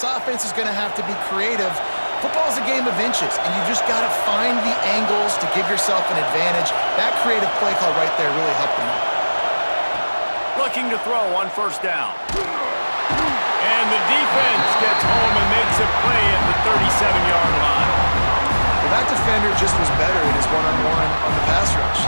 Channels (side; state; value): both; inverted; correlation -1.00